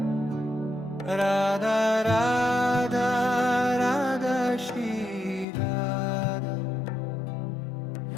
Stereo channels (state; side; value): drops out; right; at 5.5 s